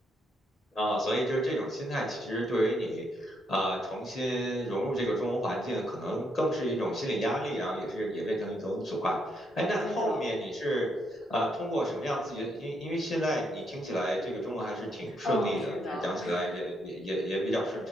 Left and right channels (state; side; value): normal; both; correlation 0.76